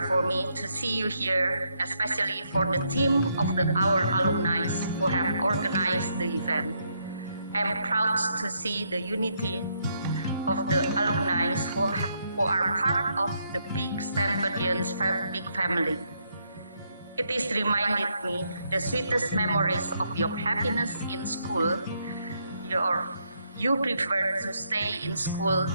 for me to see you here, especially for the team of our alumni who have organized the event. I am proud to see the unity of the alumni who are part of the big Stamfordian big family. It is reminded me the sweetest memories of your happiness in school. You prefer to stay in school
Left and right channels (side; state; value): both; inverted; correlation -0.76